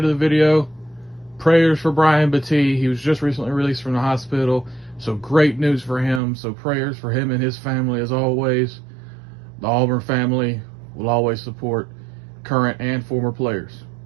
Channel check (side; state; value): left; drops out; at 6.2 s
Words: the video, prayers for Brian Battie. He was just recently released from the hospital, so great news for him. So prayers for him and his family as always. The Auburn family will always support current and former players.